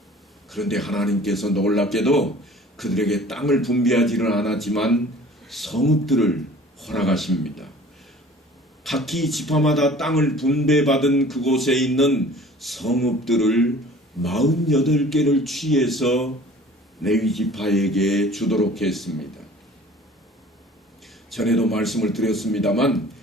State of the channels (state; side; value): normal; both; correlation 0.48